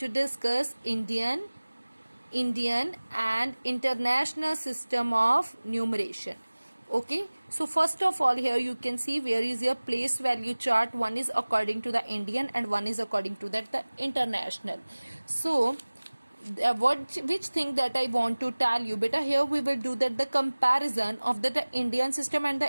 discuss: Indian and international system of numeration. Okay, so first of all, here you can see where is your place value chart. One is according to the Indian and one is according to that the international. So which thing that I want to tell you, beta, here we will do that the comparison of the Indian system and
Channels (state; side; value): inverted; both; correlation -1.00